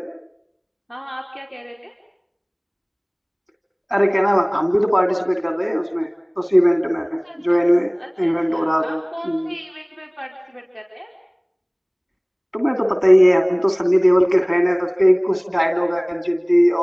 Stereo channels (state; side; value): identical; both; correlation 1.00